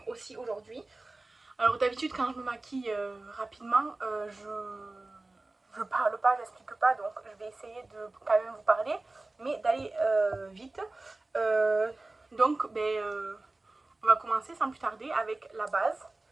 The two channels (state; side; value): quieter; left; 3.0 dB